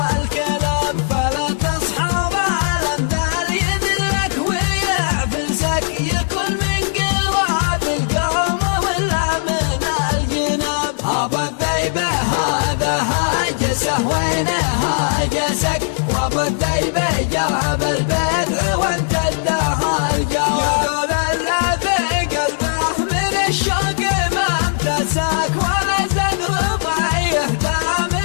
الكلام. فلا تصحب الأمثال يذلك ويعفسك يكون من قراب القوم ولا من الجناب. أبو الذيبة هذا هاجسه وين هاجسك وأبو الذيبة جاب البدع وانت اداها الجواب. يقول الذي قلبه من الشوق ما امتسك ولا زاد رضي يهدى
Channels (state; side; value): silent; right; digital silence